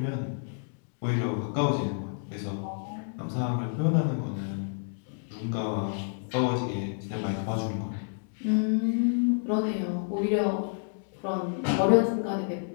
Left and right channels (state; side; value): silent; right; digital silence